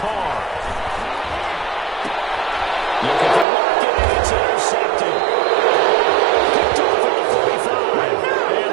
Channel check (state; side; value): drops out; left; at 3.5 s